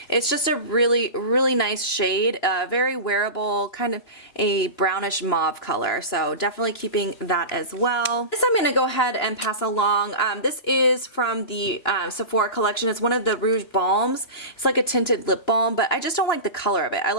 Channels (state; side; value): late; right; 2.9 ms